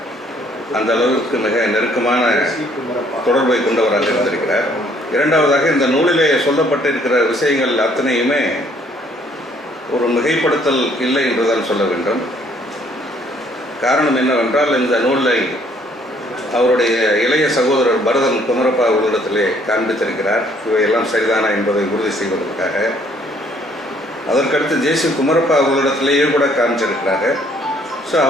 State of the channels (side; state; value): both; normal; correlation 0.63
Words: அந்த அளவுக்கு மிக நெருக்கமான தொடர்பை கொண்டவராக இருந்திருக்கிறார். இரண்டாவதாக, இந்த நூலிலே சொல்லப்பட்டிருக்கிற விஷயங்கள் அத்தனையுமே ஒரு மிகைப்படுத்தல் இல்லை என்றுதான் சொல்ல வேண்டும். காரணம் என்னவென்றால், இந்த நூலை அவருடைய இளைய சகோதரர் பரதன் குமரப்பா அவர்களிடத்திலே காண்பித்திருக்கிறார். இவையெல்லாம் சரிதானா என்பதை உறுதி செய்வதற்காக. அதற்கடுத்து ஜே.சி. குமரப்பா அவர்களிடத்திலேயே கூட காமிச்சிருக்கிறாங்க. ஸோ